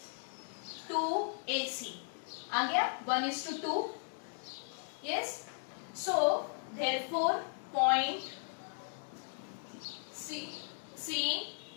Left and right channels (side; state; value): right; silent; 53 dB below the other